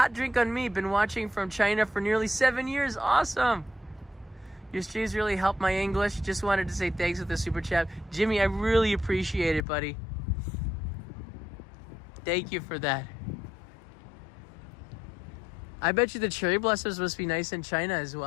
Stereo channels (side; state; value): right; drops out; at 9.7 s